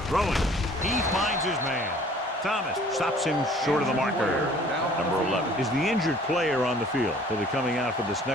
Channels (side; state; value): both; normal; correlation 0.53